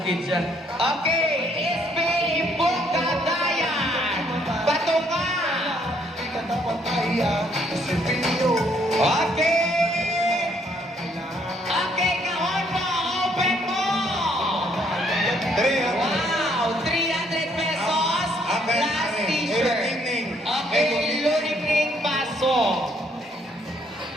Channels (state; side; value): normal; both; correlation 0.68